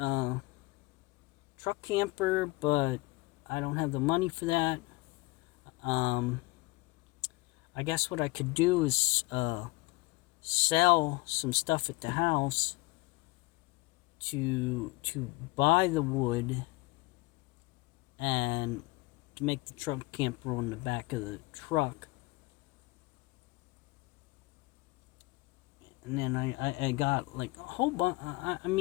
truck camper, but I don't have the money for that. I guess what I could do is sell some stuff at the house to buy the wood and to make the truck camper on the back of the truck. And then I got like a whole bunch. I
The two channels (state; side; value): quieter; right; 22.4 dB